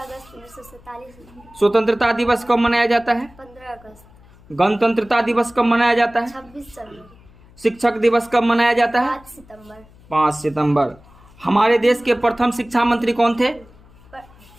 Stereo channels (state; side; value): noise; left; hum, 26 dB below the sound